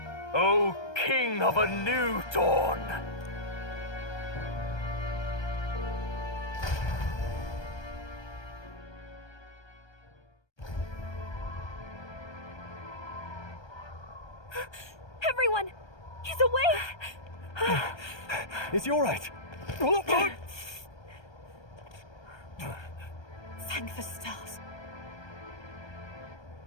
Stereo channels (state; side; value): late; right; 1.3 ms